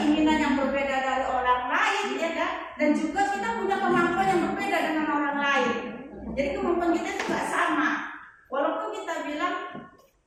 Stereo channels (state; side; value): identical; both; correlation 1.00